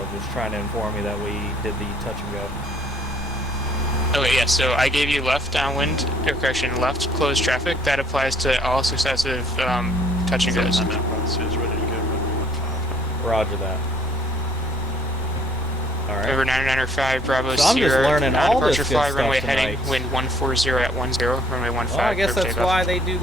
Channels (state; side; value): normal; both; correlation 0.61